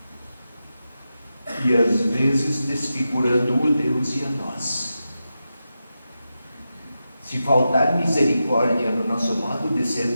E às vezes desfigurando o Deus e a nós. Se faltar misericórdia no nosso modo de ser,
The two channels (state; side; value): inverted; both; correlation -0.90